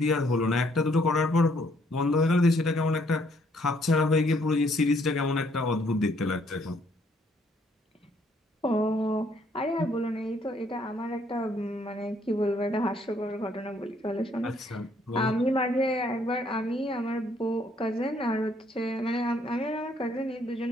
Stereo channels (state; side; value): normal; both; correlation 0.67